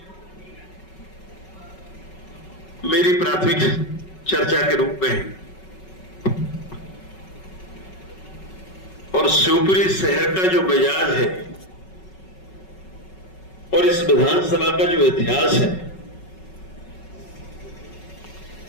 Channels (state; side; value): late; right; 5.3 ms